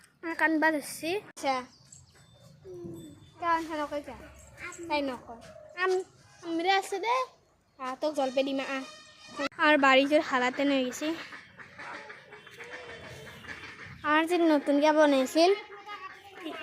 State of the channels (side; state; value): both; identical; correlation 1.00